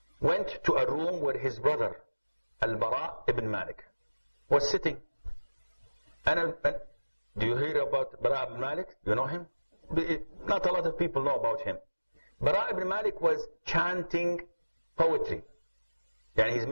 went to a room where his brother, Al-Bara ibn Malik, was sitting. And do you hear about Bara ibn Malik? You know him? Not a lot of people know about him. Bara ibn Malik was chanting poetry. And he's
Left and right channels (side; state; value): both; inverted; correlation -1.00